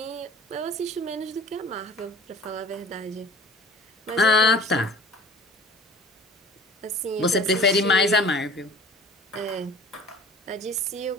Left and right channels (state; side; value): normal; both; correlation 0.46